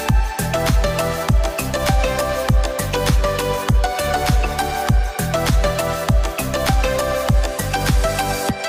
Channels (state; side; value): identical; both; correlation 1.00